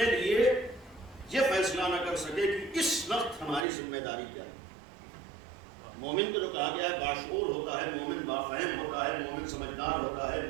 لیے یہ فیصلہ نہ کر سکے کہ اس وقت ہماری ذمہ داری کیا ہے۔ مومن کو جو کہا گیا ہے باشعور ہوتا ہے، مومن بافہم ہوتا ہے، مومن سمجھدار ہوتا ہے،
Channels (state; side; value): drops out; left; at 3.7 s